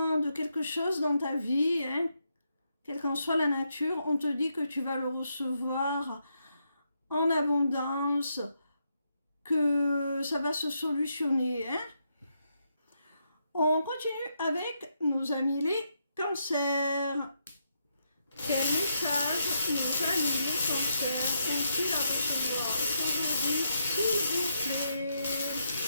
de quelque chose dans ta vie, hein, quelle qu'en soit la nature, on te dit que tu vas le recevoir en abondance, que ça va se solutionner. Hein. On continue avec nos amis les cancers. Quel message nos amis les cancers ont-ils à recevoir aujourd'hui, s'il vous plaît?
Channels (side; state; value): both; inverted; correlation -0.80